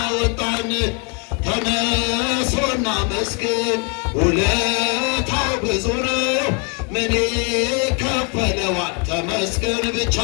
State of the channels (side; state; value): right; quieter; 36.1 dB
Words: ተነሱና መስግን ውለታው ብዙ ነው ምን ይከፈለዋል? ተመስገን ብቻ